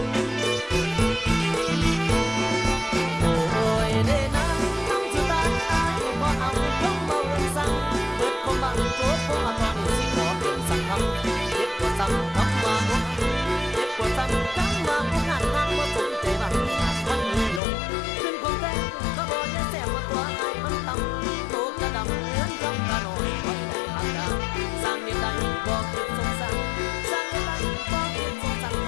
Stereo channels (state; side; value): drops out; right; at 17.6 s